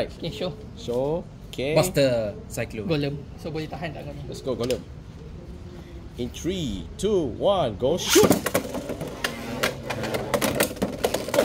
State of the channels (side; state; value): both; identical; correlation 1.00